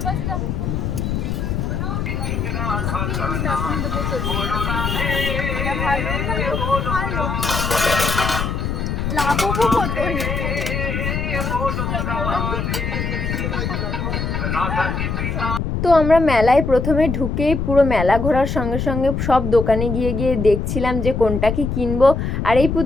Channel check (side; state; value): left; noise; rumble, 2 dB below the sound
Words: আছে। লাভও কত। তো আমরা মেলায় প্রথমে ঢুকেই পুরো মেলা ঘোরার সঙ্গে সঙ্গে সব দোকানে গিয়ে গিয়ে দেখছিলাম যে কোনটা কি কিনবো। আর এই